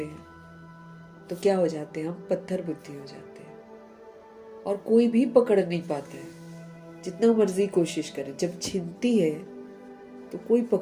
हैं, तो क्या हो जाते हैं? हम पत्थर बुद्धि हो जाते हैं, और कोई भी पकड़ नहीं पाता है, जितना मर्जी कोशिश करे। जब छिनती है तो कोई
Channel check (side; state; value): both; identical; correlation 1.00